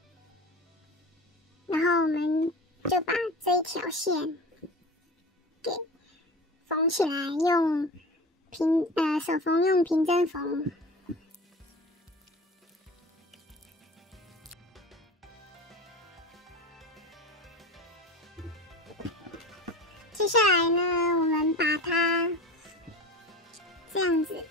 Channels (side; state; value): both; normal; correlation 0.33